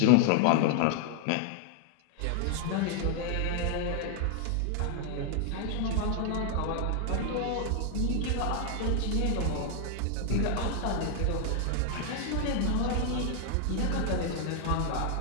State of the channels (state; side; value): different; both; correlation 0.00